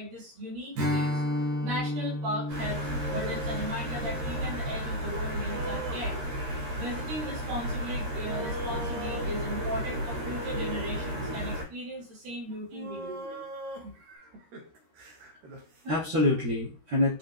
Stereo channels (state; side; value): late; left; 13 ms